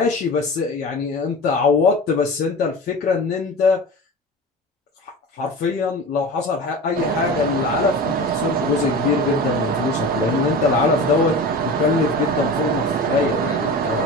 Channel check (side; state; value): both; normal; correlation 0.32